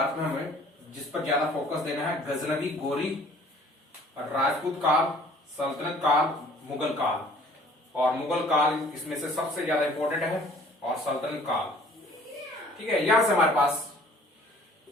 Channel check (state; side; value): normal; both; correlation 0.53